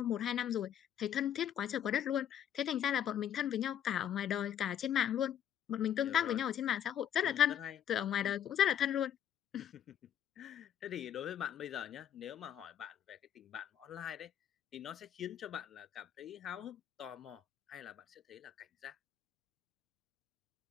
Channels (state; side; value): quieter; right; 9.8 dB